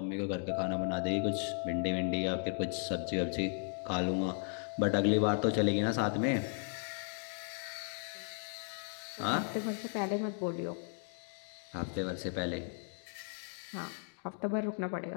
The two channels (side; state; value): right; silent; 54 dB below the other